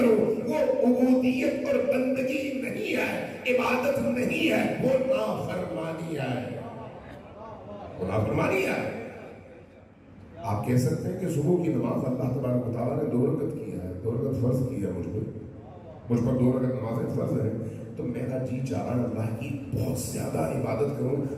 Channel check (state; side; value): identical; both; correlation 1.00